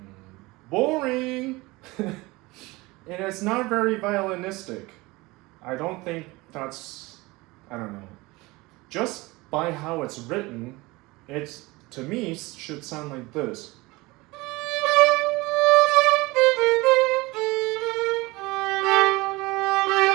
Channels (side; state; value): left; quieter; 22.2 dB